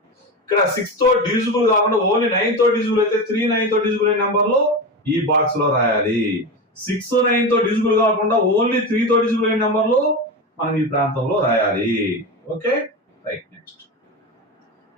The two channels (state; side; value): normal; both; correlation 0.21